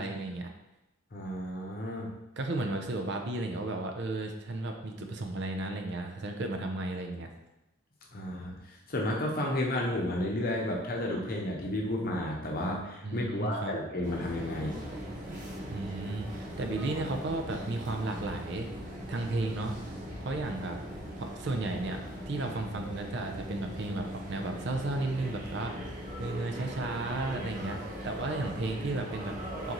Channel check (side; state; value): both; normal; correlation 0.55